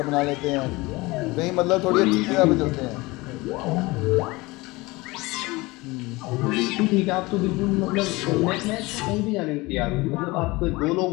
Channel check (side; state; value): right; quieter; 22.4 dB